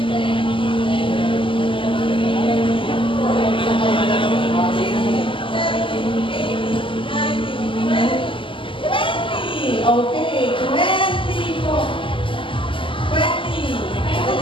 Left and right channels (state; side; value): late; right; 0.25 ms